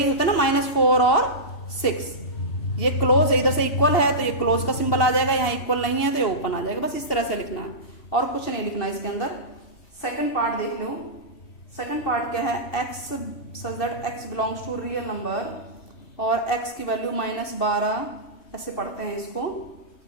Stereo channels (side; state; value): right; late; 2.7 ms